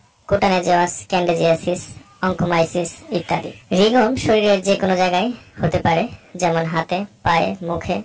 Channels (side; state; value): both; identical; correlation 1.00